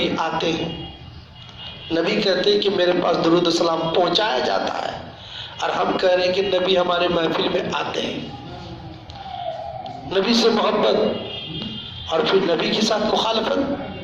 آتے ہیں، نبی کہتے ہیں کہ میرے پاس درود و سلام پہنچایا جاتا ہے، اور ہم کہہ رہے ہیں کہ نبی ہمارے محفل میں آتے ہیں۔ نبی سے محبت اور پھر نبی کے ساتھ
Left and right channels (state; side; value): identical; both; correlation 1.00